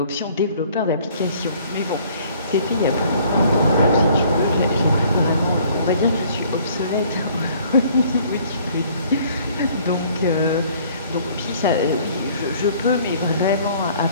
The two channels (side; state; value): both; inverted; correlation -0.57